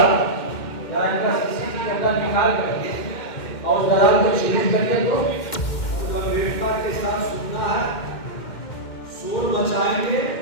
जरा इनका सीसीटीवी कैमरा निकाल करके और दलाल को छीन करके तो गंभीरता के साथ सुनना है। शोर मचाएंगे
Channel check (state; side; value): late; right; 2.1 ms